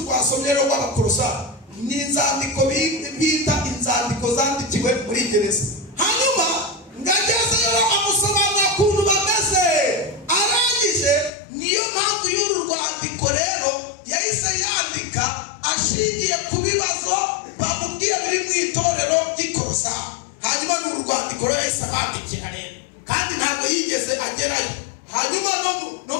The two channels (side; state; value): right; drops out; at 11.3 s